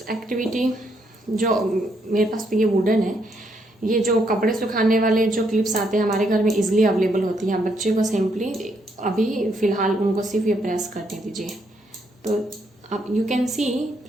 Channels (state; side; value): normal; both; correlation 0.74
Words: activity, जो मेरे पास तो ये वुडन है, ये जो कपड़े सुखाने वाले जो क्लिप्स आते हैं हमारे घर में इजीली अवेलेबल होती हैं। बच्चे को सिंपली अभी फ़िलहाल उनको सिर्फ ये प्रेस करने दीजिए। तो आप यू कैन सी